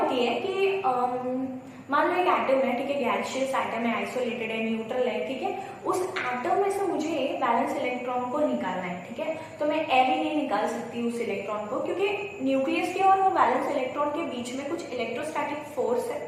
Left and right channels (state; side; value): identical; both; correlation 1.00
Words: है कि मान लो एक एटम है, ठीक है, गैसियस एटम है, आइसोलेटेड है, न्यूट्रल है, ठीक है, उस एटम में से मुझे वैलेंस इलेक्ट्रॉन को निकालना है। ठीक है, तो मैं ऐसे नहीं निकाल सकती उस इलेक्ट्रॉन को, क्योंकि न्यूक्लियस के और वो वैलेंस इलेक्ट्रॉन के बीच में कुछ इलेक्ट्रोस्टैटिक फोर्स है,